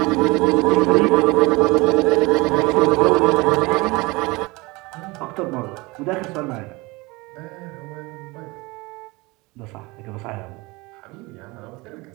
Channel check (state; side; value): quieter; left; 23.9 dB